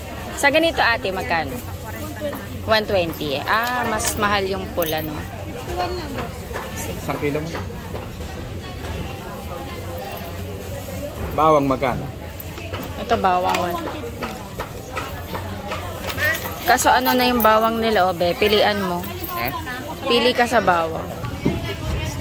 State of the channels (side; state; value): both; identical; correlation 1.00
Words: Sa ganito, ate, magkano? 120. Ah, mas mahal yung pula, no? 1 kilo mo. Bawang magkano? Ito, bawang. Kaso ano na yung bawang nila, obe? Pilian mo. Pili ka sa bawang.